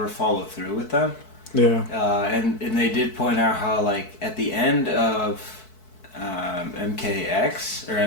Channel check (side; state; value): right; late; 4.6 ms